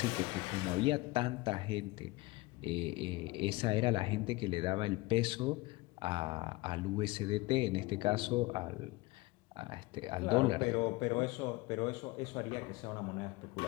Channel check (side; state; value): right; quieter; 21.5 dB